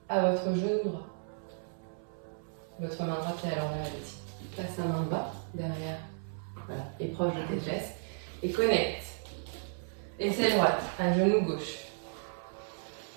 à votre genou droit. Votre main droite est à l'envers ici. Place la main bas, derrière, voilà, et proche de tes fesses. Et connecte. Aisselle droite à genou gauche.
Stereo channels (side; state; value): left; silent; 55 dB below the other